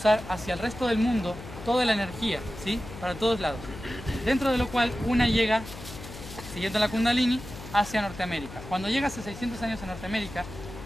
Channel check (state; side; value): noise; left; hum, 13 dB below the sound